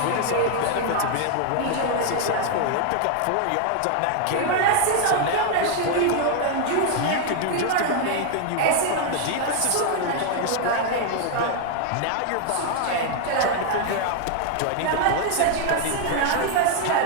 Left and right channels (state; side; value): different; both; correlation 0.00